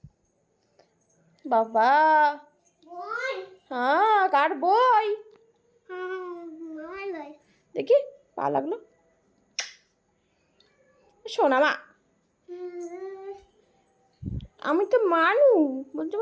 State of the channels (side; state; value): both; identical; correlation 1.00